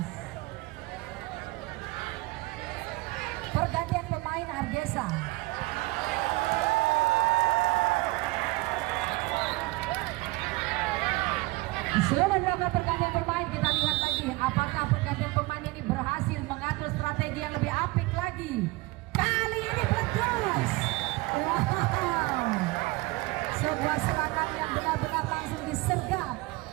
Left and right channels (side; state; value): left; quieter; 22.1 dB